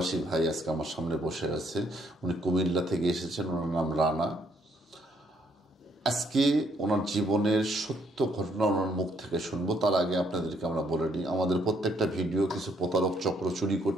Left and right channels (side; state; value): both; normal; correlation 0.70